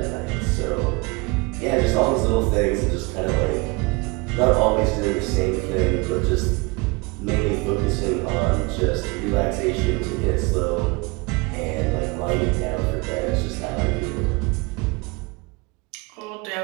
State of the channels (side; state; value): left; quieter; 26.7 dB